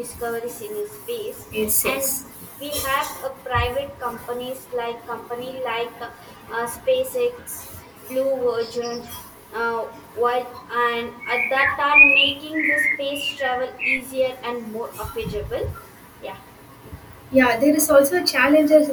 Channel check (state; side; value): identical; both; correlation 1.00